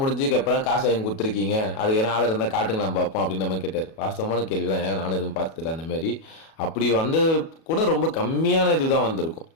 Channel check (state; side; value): late; right; 37 ms